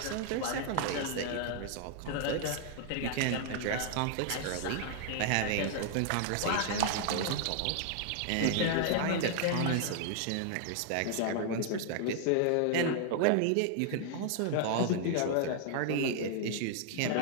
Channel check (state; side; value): different; both; correlation 0.00